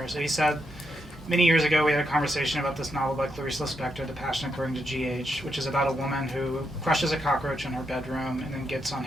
So he said, many years ago we had a conversation about this novel by Clarice Lispector, The Passion According to G.H., which is about a woman who crushes a cockroach in her bedroom and then gets on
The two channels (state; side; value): normal; both; correlation 0.81